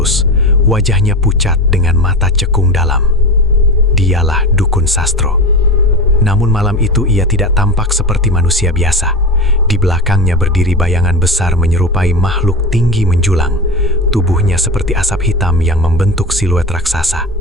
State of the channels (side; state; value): both; normal; correlation 0.25